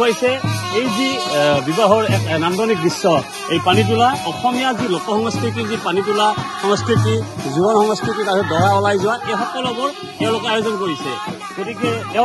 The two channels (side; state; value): both; identical; correlation 1.00